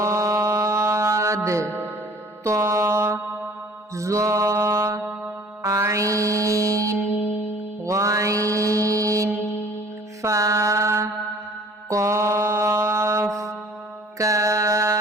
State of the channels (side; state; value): both; normal; correlation 0.50